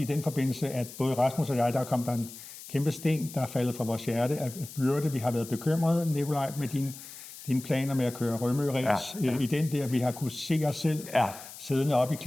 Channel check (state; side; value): noise; left; hiss, 15 dB below the sound